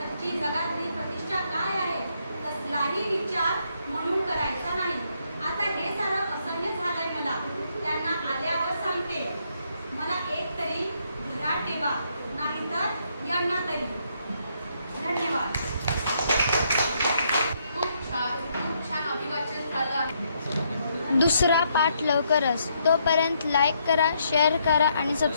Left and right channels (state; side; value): inverted; both; correlation -0.74